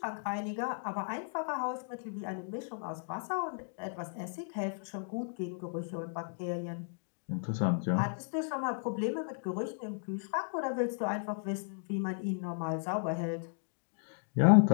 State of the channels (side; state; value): right; silent; digital silence